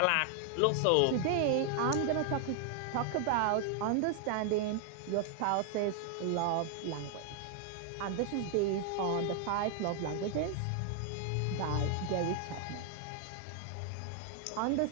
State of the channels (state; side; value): different; both; correlation 0.00